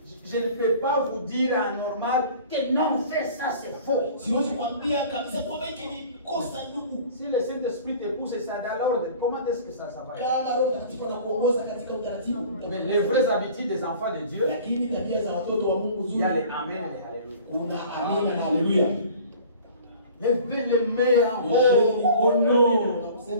Je ne peux pas vous dire en normal que non, fais ça, c'est faux. Si le Saint-Esprit te pousse ça dans l'ordre, comment est-ce que ça va être? Mais les vraies habitudes des enfants de Dieu, il y a les Amen et Alléluia. Levez les mains en haut au nom.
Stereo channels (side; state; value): both; inverted; correlation -0.46